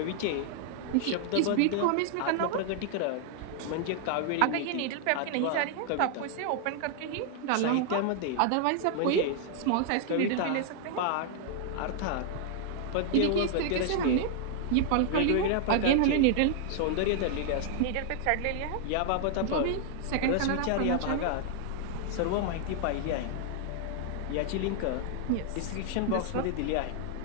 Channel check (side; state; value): both; different; correlation 0.00